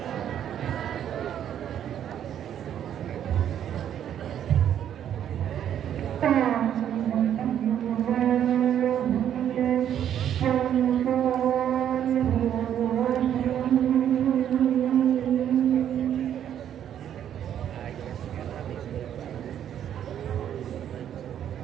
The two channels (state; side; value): quieter; left; 10.0 dB